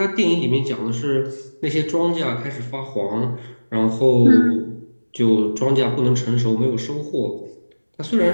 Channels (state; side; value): inverted; both; correlation -1.00